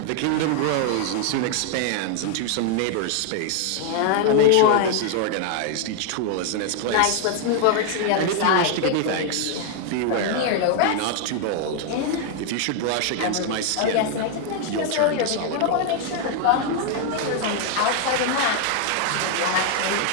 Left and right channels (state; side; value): different; both; correlation 0.00